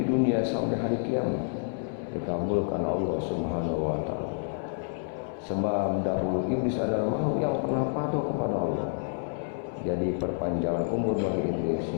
dunia sampai hari kiamat dikabulkan Allah Subhanahu wa taala. Sebab dahulu iblis adalah makhluk yang pernah patuh kepada Allah. Jadi perpanjangan umur bagi iblis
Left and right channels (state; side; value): silent; right; 59 dB below the other